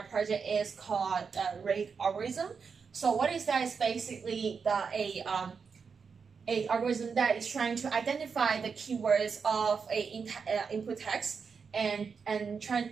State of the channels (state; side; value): quieter; left; 5.7 dB